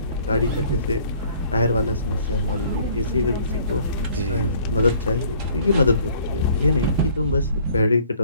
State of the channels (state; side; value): inverted; both; correlation -0.57